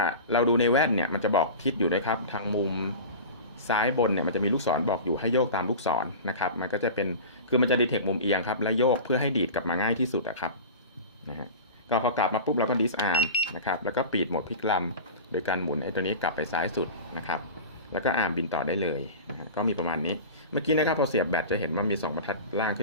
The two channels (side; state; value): both; inverted; correlation -0.31